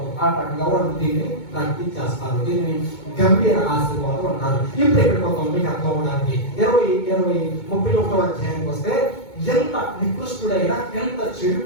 ఆ రకంగా వాళ్ళు దీన్ని ప్రాక్టీస్ చేస్తారు. దీన్ని గంభీర ఆశీర్వాదం అంటారు. ఇప్పుడు ఇక్కడ ఒక మీకు అర్థం అవడానికి 31వ అధ్యాయానికి వస్తే ఎంత నికృష్టుడైనా, ఎంత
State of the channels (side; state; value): right; late; 2.2 ms